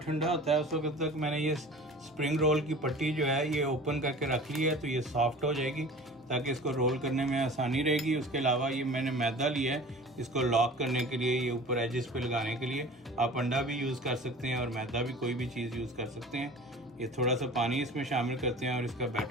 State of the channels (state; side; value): normal; both; correlation 0.41